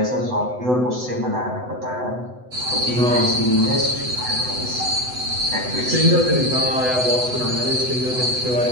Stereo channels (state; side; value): late; left; 8.0 ms